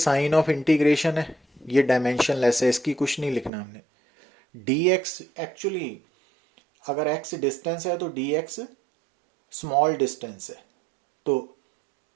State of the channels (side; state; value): left; drops out; at 3.5 s